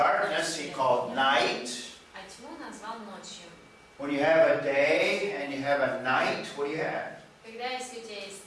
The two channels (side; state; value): both; identical; correlation 1.00